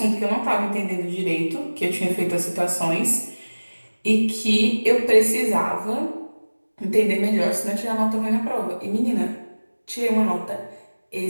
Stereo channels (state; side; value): inverted; both; correlation -1.00